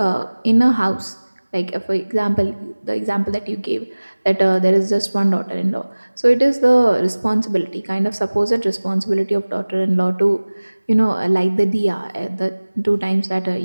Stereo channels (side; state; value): both; inverted; correlation -1.00